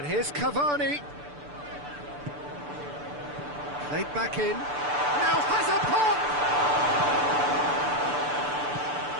here's Cavani. Played back in. Now has a pop!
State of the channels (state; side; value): late; left; 6.9 ms